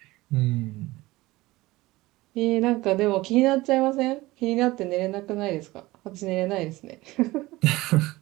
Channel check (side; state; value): left; quieter; 19.4 dB